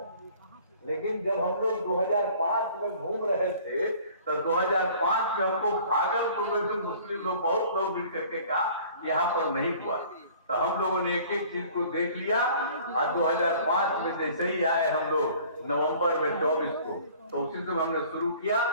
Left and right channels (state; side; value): inverted; both; correlation -0.50